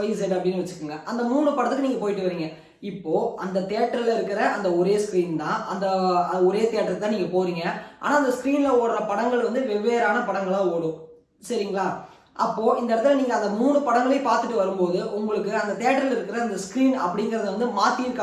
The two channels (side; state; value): both; identical; correlation 1.00